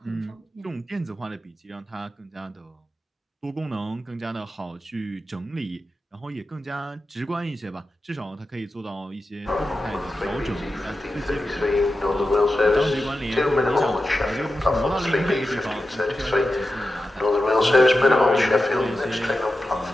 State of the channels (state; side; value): normal; both; correlation 0.91